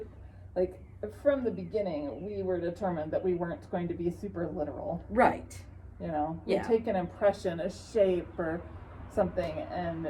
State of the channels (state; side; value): identical; both; correlation 1.00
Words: like, from the beginning, we were determined that we weren't going to be super literal. Right. You know, Yeah. we take an impression, a shape or something, and